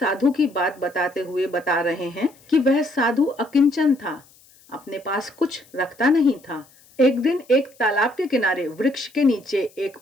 की बात बताते हुए बता रहे हैं कि वह साधु अकिंचन था, अपने पास कुछ रखता नहीं था। एक दिन एक तालाब के किनारे वृक्ष के नीचे एक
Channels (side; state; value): left; noise; hiss, 28 dB below the sound